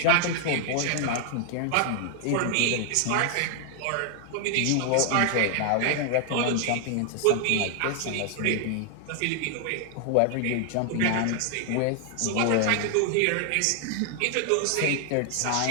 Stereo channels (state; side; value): different; both; correlation 0.00